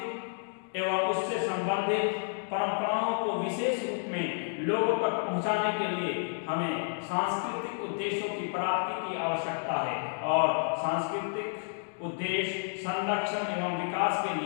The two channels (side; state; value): right; silent; digital silence